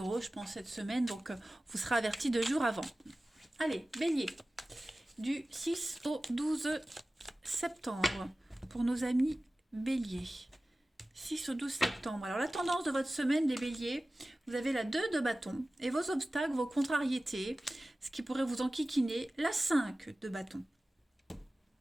je pense, cette semaine. Donc, vous serez avertis 2 jours avant. Allez, bélier, du 6 au 12 septembre pour nos amis béliers. 6 au 12 septembre. Alors la tendance de votre semaine, les béliers, vous avez la 2 de bâton et vos obstacles, vos contrariétés, ce qui pourrait vous enquiquiner, la 5 de bâton.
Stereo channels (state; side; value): normal; both; correlation 0.96